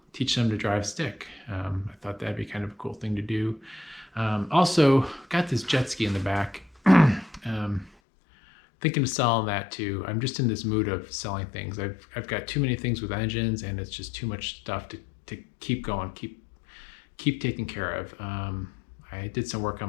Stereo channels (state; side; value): drops out; right; at 7.9 s